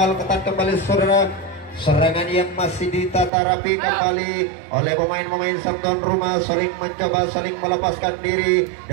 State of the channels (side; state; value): left; drops out; at 3.3 s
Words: ketat kembali, saudara. Serangan yang masih ditata rapi kembali oleh pemain-pemain sang tuan rumah, saling mencoba, saling melepaskan diri